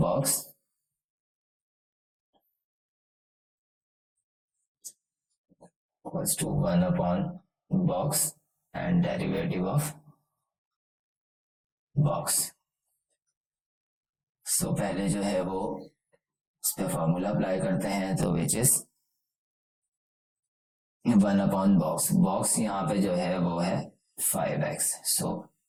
equals to 1/box and derivative of box। सो पहले जो है वो इस पे फॉर्मूला अप्लाई करते हैं, तो विच इज 1/box। बॉक्स यहाँ पे जो है वो है 5x, so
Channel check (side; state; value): both; identical; correlation 1.00